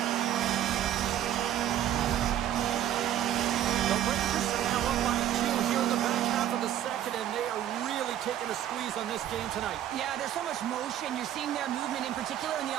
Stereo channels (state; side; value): quieter; left; 11.4 dB